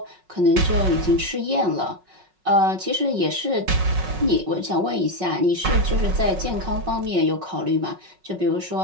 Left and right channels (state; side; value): late; left; 5.4 ms